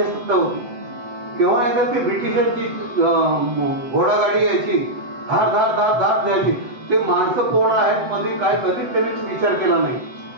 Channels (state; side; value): late; left; 7.9 ms